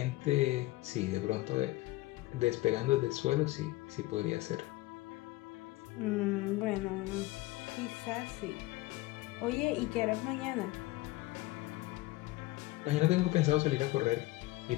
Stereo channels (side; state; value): right; quieter; 19.4 dB